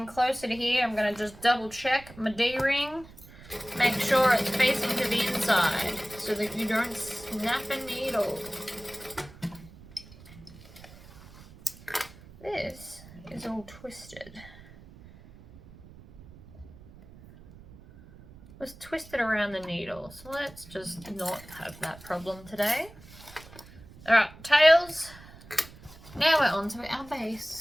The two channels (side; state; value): right; noise; rumble, 20 dB below the sound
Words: closer to here. I'm going to just double check my D-ring. Make sure it's facing to the inside so that you don't snap a needle. This is all twisted. It was twisted around the needle, so let's just not have that problem today. Alright, tails. Now we're on to our